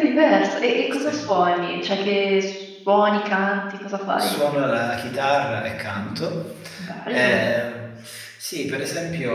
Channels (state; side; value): identical; both; correlation 1.00